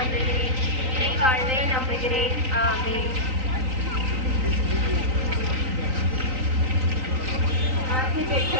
இறை வாழ்வை நம்புகிறேன். ஆமென். ஆசி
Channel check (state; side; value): late; left; 3.9 ms